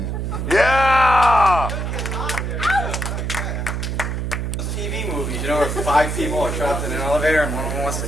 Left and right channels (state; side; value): noise; right; hum, 2 dB below the sound